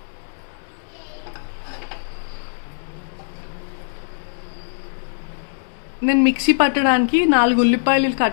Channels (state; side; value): silent; right; digital silence